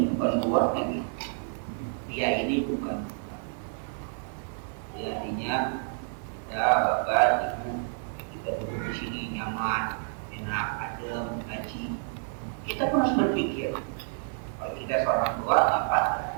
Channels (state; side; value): silent; left; digital silence